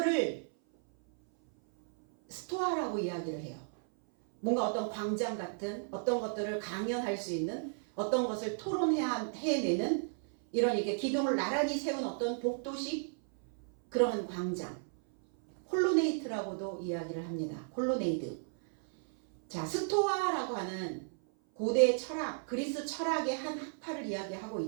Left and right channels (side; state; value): left; silent; 55 dB below the other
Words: 스토아라고 이야기를 해요. 뭔가 어떤 광장 같은 어떤 것들을 강연할 수 있는, 어떤 것을 토론해내는 이런 이렇게 기둥을 나란히 세운 어떤 복도식 그러한 광장, 콜로네이트라고도 이야기를 합니다. 콜로네이드. 자, 스토아라고 하는 고대 철학, 그리스 철학의 한 학파를 이야기하고